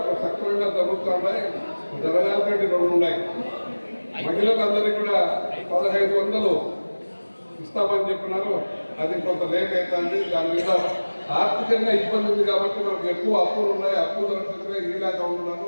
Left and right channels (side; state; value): both; inverted; correlation -1.00